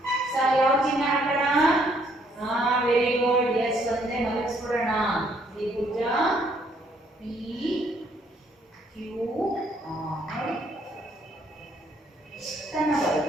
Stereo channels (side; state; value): both; normal; correlation 0.67